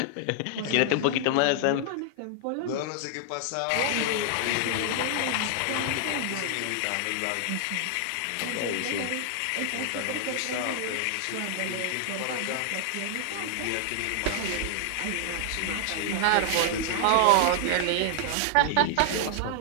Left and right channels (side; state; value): both; different; correlation 0.00